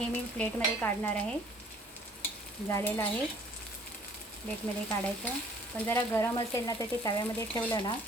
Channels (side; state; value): both; normal; correlation 0.56